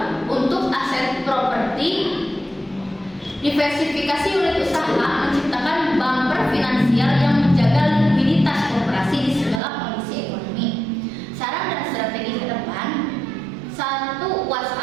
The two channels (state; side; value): drops out; left; at 9.6 s